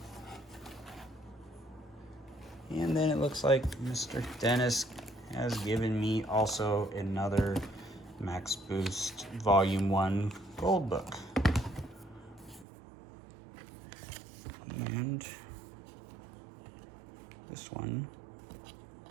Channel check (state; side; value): drops out; left; at 12.7 s